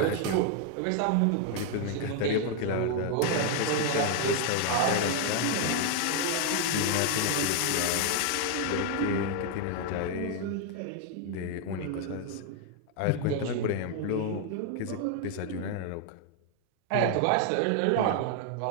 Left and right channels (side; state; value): both; different; correlation 0.00